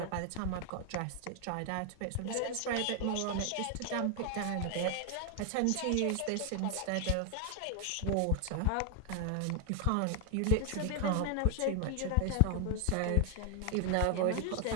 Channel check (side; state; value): both; different; correlation 0.00